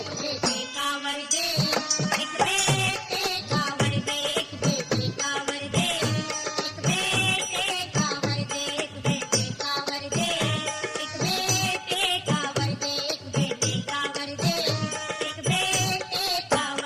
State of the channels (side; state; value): both; identical; correlation 1.00